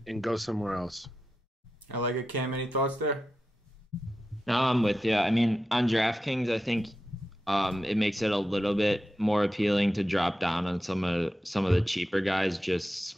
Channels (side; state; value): both; normal; correlation 0.91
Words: and go somewhere else. I like it. Cam, any thoughts there? No, I'm with you. I mean, on DraftKings, I think it makes it a little bit more appealing to drop down on some of the cheaper guys,